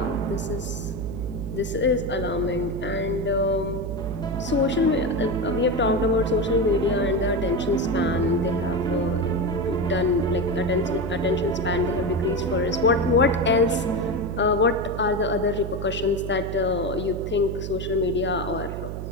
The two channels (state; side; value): noise; right; hum, 6 dB below the sound